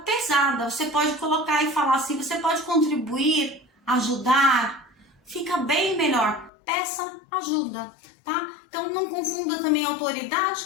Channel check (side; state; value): right; drops out; at 6.5 s